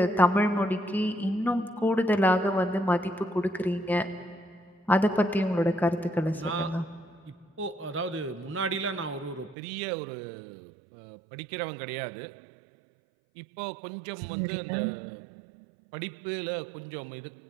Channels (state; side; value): drops out; left; at 9.6 s